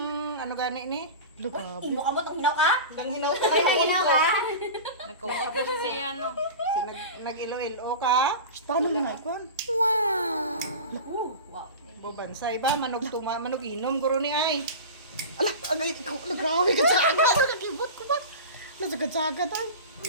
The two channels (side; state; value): both; inverted; correlation -0.30